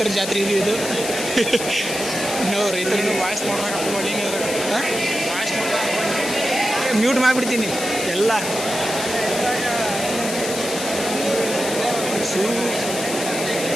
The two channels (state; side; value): noise; left; hiss, 6 dB below the sound